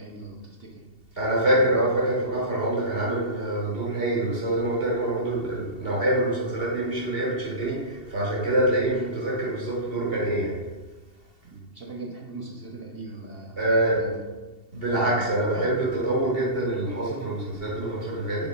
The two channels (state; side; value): late; right; 2.7 ms